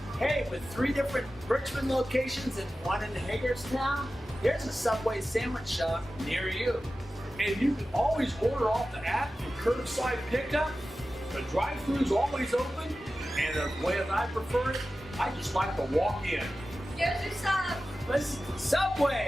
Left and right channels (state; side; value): normal; both; correlation 0.94